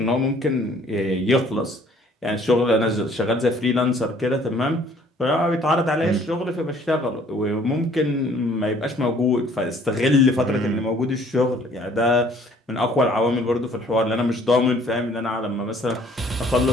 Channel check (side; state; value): both; normal; correlation 0.58